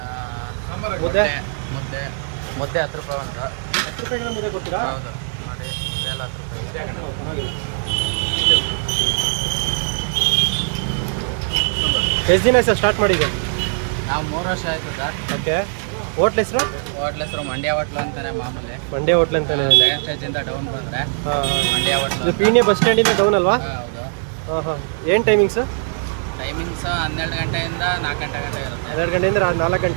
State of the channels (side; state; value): left; silent; digital silence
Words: ಮುದ್ದೆ 10 ರೂಪಾಯಿ ಒಂದು. 10 ರೂಪಾಯಿಗೆಲ್ಲ ಮುದ್ದೆ ಕೊಡ್ತೀರಾ? ಹೌದು ನೋಡಿ, ಮುದ್ದೆ ಎಲ್ಲ 10 ರೂಪಾಯಿ. ಪರವಾಗಿಲ್ಲ. ಎಷ್ಟು ದಿನ ಸರ್ ಸ್ಟಾರ್ಟ್ ಮಾಡಿದೆ? ನಾವು 3 ವರ್ಷ ಆಯಿತು ಸರ್. ಓಕೆ. ಹೋಟ್ಲ್ ಹೆಸರು? ಹೋಟ್ಲ್ ಹೆಸರು ಮಂಡ್ಯ ಹೋಟ್ಲು ಅಂತಾನೆ ಮಾಮೂಲಿ. ಮಂಡ್ಯ ಹೋಟ್ಲ್ ಅಂತಾನೆ. ಸೆಕೆಂಡ್ ಸ್ಟೇಜಿಂದ ಡೌನ್ ಬಂದರೆ ಮಂಡ್ಯ ಹೋಟ್ಲು. ಇದು ಪೀಣ್ಯ ಬಸ್ ಸ್ಟ್ಯಾಂಡಿಂದ ಡೌನ್ ಅಲ್ವಾ? ಹೌದು. ಹಾಂ. ಏನು ಟೈಮಿಂಗ್ಸು? ಟೈಮಿಂಗ್ಸ್ 12 ಗಂಟೆಯಿಂದ 4 ಗಂಟೆ ಇರುತ್ತೆ. 12 ಗಂಟೆಯಿಂದ 4